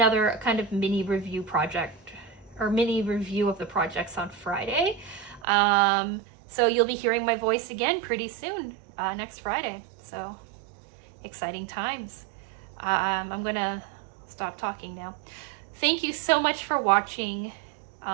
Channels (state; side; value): drops out; left; at 5.5 s